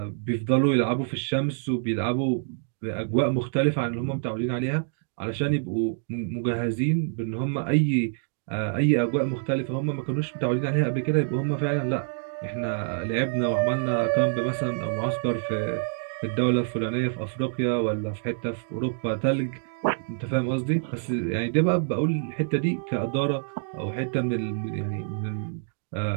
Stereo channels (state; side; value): silent; left; digital silence